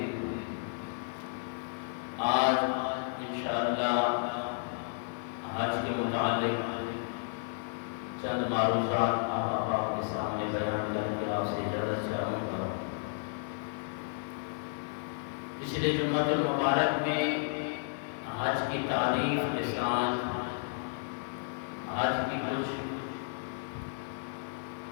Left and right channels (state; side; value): silent; right; 56 dB below the other